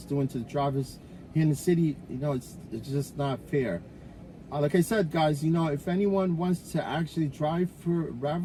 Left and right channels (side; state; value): both; identical; correlation 1.00